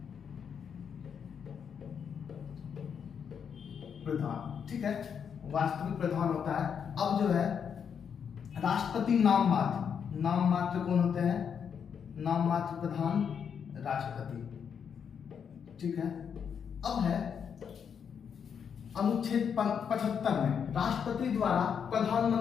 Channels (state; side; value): quieter; right; 7.3 dB